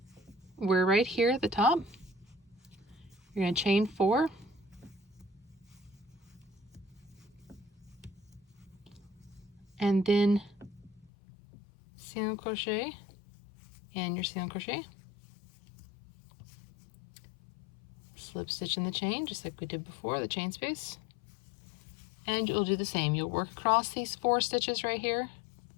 we're right here at the top. You're going to chain 4. And then single crochet and your single crochet. Slip stitch in the chain, just like we did before, the chain space. And you'll do the same. You'll work across these 4 stitches right here.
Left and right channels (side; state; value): right; drops out; at 11.1 s